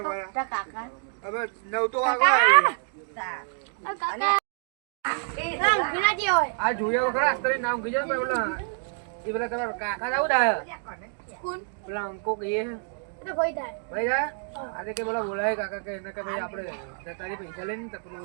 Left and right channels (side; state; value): left; silent; 60 dB below the other